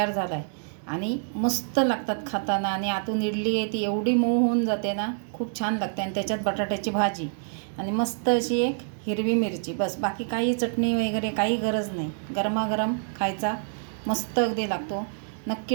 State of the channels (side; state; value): left; silent; 60 dB below the other